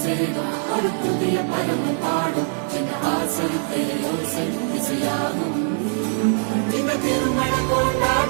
சேரும் ஒரு புதிய பருவம் பாடும் சின்ன ஆசை பெரியோசை இசையாகும் இந்த திருமண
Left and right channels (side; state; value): left; silent; 64 dB below the other